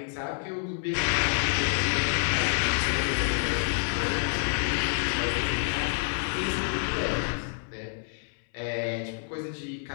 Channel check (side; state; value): right; silent; 59 dB below the other